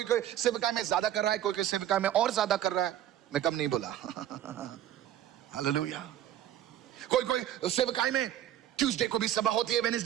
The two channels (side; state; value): left; quieter; 11.7 dB